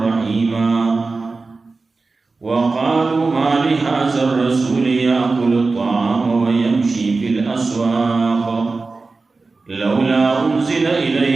رحيما. وقالوا ما لهذا الرسول يأكل الطعام ويمشي في الأسواق لولا أنزل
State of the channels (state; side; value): quieter; left; 3.9 dB